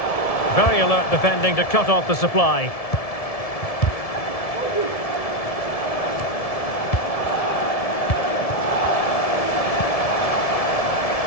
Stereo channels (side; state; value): right; late; 1.7 ms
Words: Very alert defending to cut off the supply.